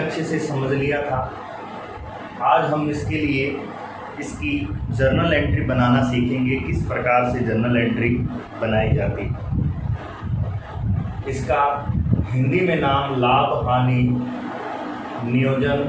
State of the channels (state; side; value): identical; both; correlation 1.00